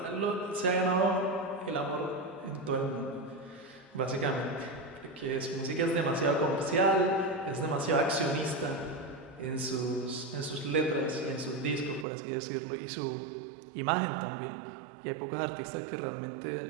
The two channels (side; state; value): left; drops out; at 12.1 s